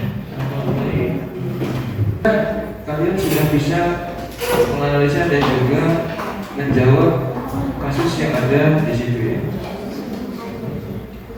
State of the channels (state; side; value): identical; both; correlation 1.00